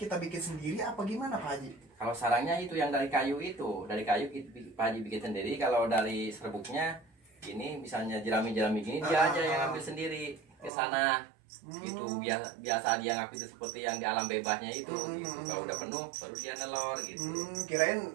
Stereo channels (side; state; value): left; drops out; at 10.7 s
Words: bikin sendiri apa gimana Pak Haji? Kalau sarangnya itu yang dari kayu Pak Haji bikin sendiri. Kalau dari serbuknya ini misalnya jerami-jerami gini dia aja yang ambil sendiri ke sana. Gitu biasa dia ngaku itu seperti yang di alam bebasnya itu gitu. Kalau udah penuh baru dia nelor gitu. Kirain